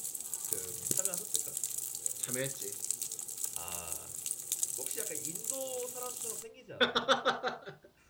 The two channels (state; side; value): identical; both; correlation 1.00